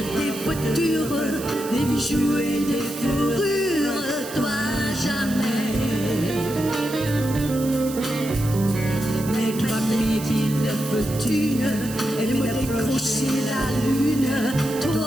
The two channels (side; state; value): right; noise; hiss, 12 dB below the sound